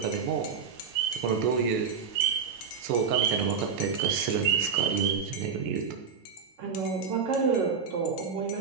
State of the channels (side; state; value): left; quieter; 6.2 dB